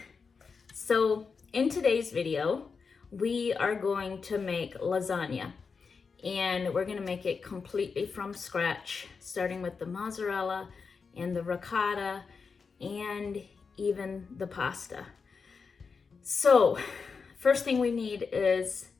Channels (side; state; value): right; quieter; 5.2 dB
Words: So in today's video, we are going to make lasagna, and we're going to make it completely from scratch, starting with the mozzarella and the ricotta and even the pasta. So first thing we need is